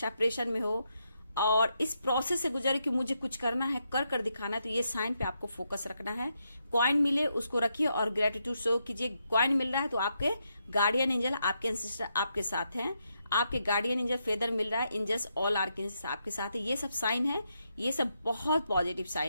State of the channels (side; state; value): both; inverted; correlation -0.81